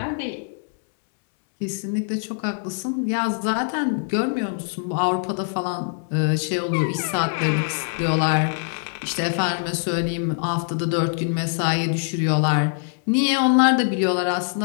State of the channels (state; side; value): silent; right; 63 dB below the other